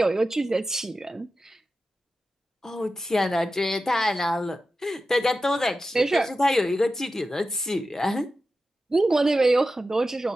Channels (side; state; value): both; normal; correlation 0.92